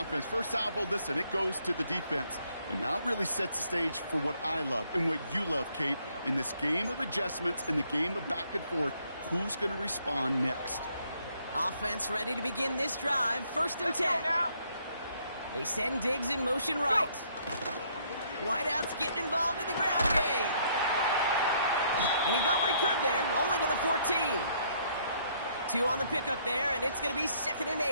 First salvo, listen, it goes to the defense. And now it really sets the stage for what I love and what you love, Kate. In this game of adjustments, in the game of back and forth, who's going to respond next? Offense ready to begin this drive. 1st and 10. Let's go now. They send Diggs in motion right. Whiteout's getting involved in the ground game. And he got what he could there, only to the 14. 2 on the pickup there, and it's going to be 2nd and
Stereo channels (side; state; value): both; inverted; correlation -0.67